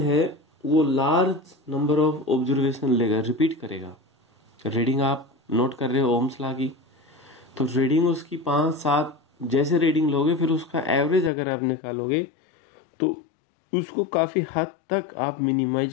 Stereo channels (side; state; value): right; drops out; at 11.3 s